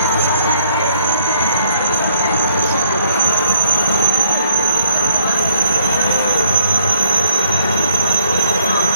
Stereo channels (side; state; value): both; inverted; correlation -0.63